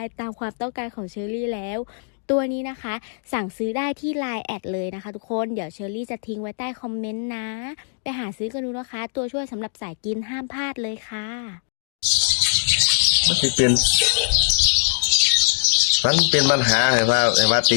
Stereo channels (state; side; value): silent; right; digital silence